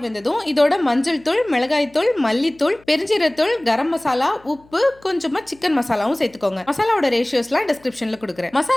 வெந்ததும் இதோட மஞ்சள் தூள், மிளகாய் தூள், மல்லித்தூள், பெருஞ்சீரகத்தூள், கரம் மசாலா, உப்பு, கொஞ்சமா சிக்கன் மசாலாவும் சேர்த்துக்கோங்க. மசாலாவோட ரேஷியோஸ்லாம் டிஸ்கிரிப்ஷன்ல கொடுக்குறேன்.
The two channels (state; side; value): noise; left; hum, 28 dB below the sound